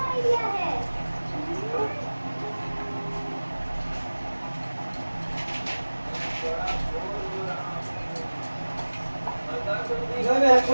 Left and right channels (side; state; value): both; inverted; correlation -1.00